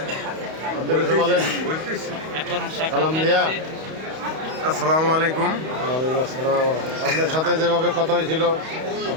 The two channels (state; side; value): late; left; 31 ms